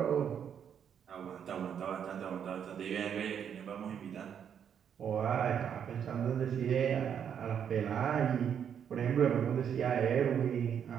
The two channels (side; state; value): left; quieter; 8.3 dB